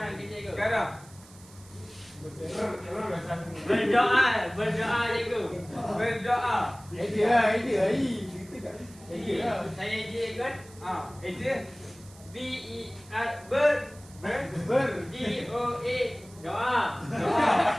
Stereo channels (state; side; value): noise; right; hiss, 23 dB below the sound